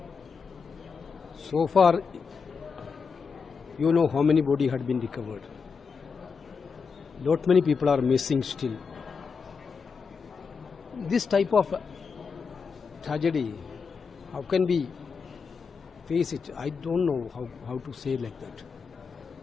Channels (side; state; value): right; quieter; 5.5 dB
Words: So far, you know how many bodies had been recovered. Lot many people are missing still. This type of tragedy, how can we face it? I don't know how to say like that.